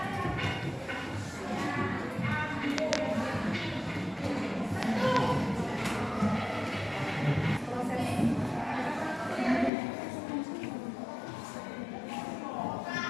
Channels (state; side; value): drops out; right; at 9.7 s